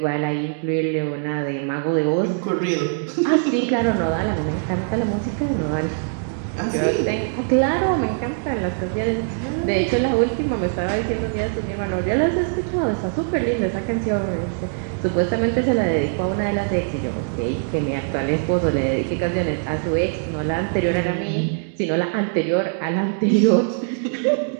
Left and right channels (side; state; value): left; silent; digital silence